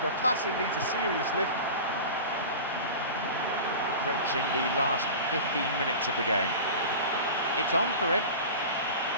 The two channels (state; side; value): inverted; both; correlation -0.33